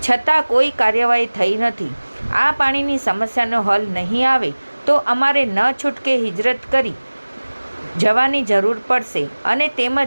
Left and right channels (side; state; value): both; inverted; correlation -1.00